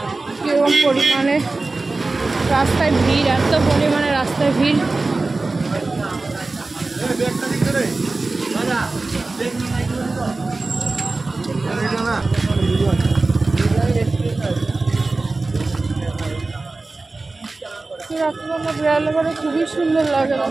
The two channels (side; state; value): left; quieter; 3.4 dB